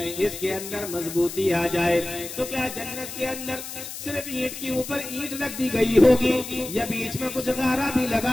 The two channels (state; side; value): noise; left; hiss, 10 dB below the sound